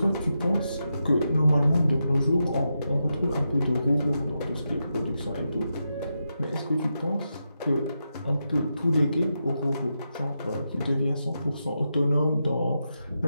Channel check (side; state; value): both; inverted; correlation -0.87